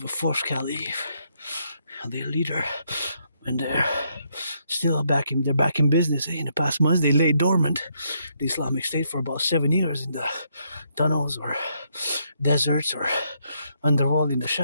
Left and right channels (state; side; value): inverted; both; correlation -0.75